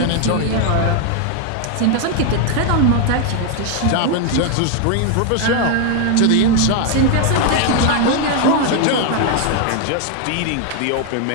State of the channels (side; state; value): both; different; correlation 0.01